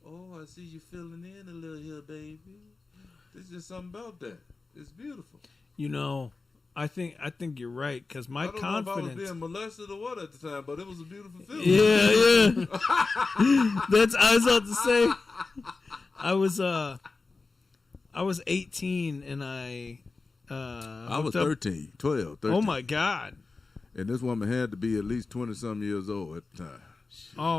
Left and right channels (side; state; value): right; quieter; 3.9 dB